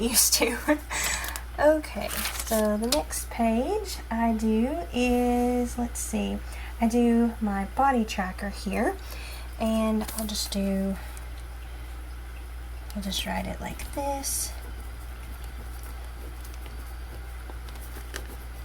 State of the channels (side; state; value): both; identical; correlation 1.00